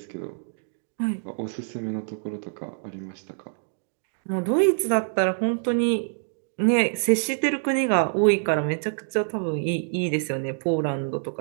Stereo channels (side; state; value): left; silent; digital silence